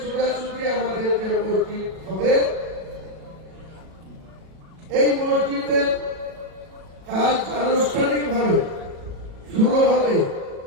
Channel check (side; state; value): left; late; 37 ms